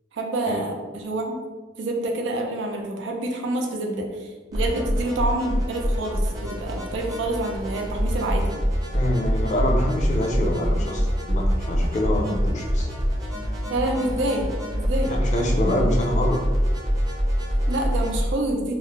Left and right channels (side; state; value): both; normal; correlation 0.73